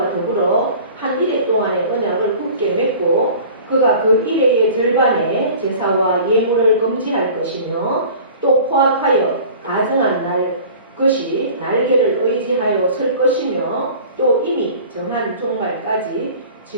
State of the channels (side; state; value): both; inverted; correlation -0.43